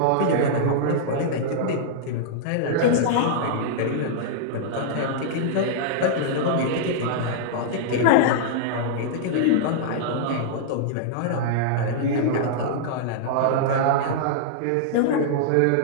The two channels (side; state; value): both; different; correlation -0.02